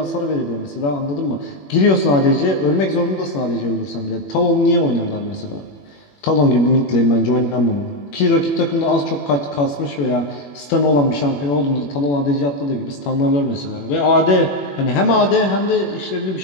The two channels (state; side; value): late; right; 21 ms